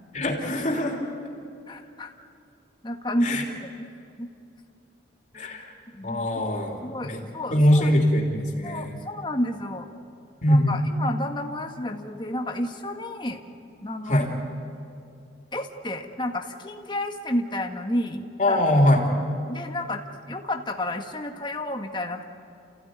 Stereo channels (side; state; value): both; normal; correlation 0.67